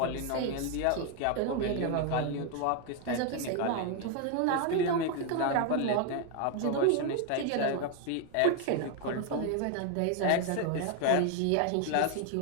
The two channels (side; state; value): both; different; correlation 0.01